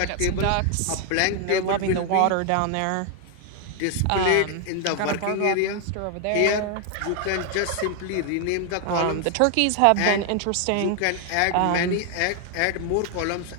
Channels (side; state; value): both; different; correlation 0.00